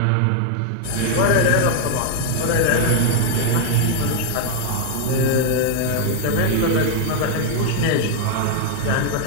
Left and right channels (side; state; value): both; different; correlation 0.00